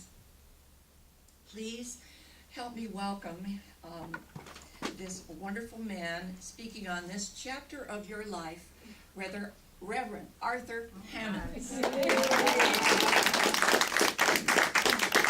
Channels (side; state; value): both; identical; correlation 1.00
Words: Please help me welcome this wonderful man speaking on this chapter of your life, Reverend Arthur Hammons.